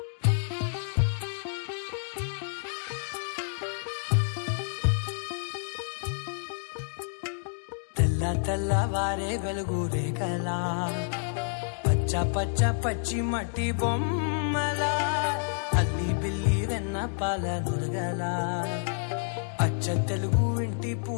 తెల్లవారే వెలుగు రేఖలా పచ్చ పచ్చ పచ్చి మట్టి బొమ్మలా అల్లి బిల్లి వెన్న పాల నురగలా అచ్చ తెలుగు ఇంటి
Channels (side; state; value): right; silent; digital silence